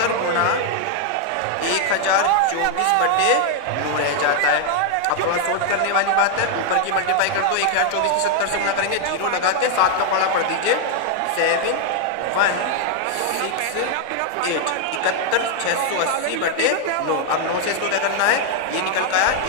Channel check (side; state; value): both; different; correlation 0.00